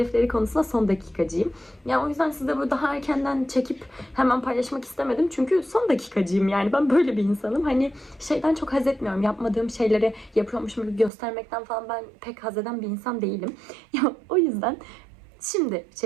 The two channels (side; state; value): left; drops out; at 11.1 s